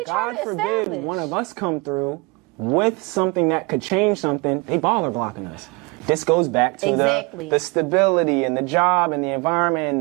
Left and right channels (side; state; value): left; quieter; 27.5 dB